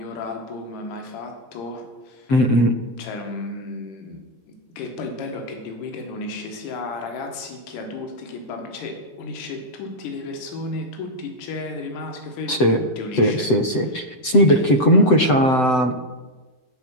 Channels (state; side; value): late; right; 7.8 ms